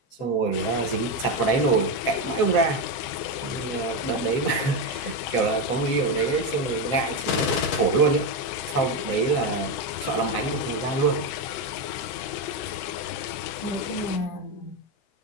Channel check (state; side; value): late; right; 15 ms